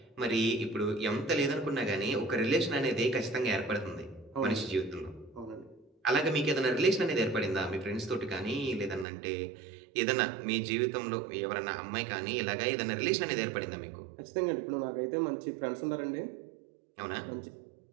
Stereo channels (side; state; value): left; drops out; at 9.1 s